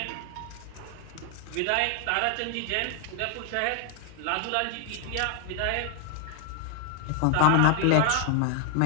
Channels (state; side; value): different; both; correlation 0.00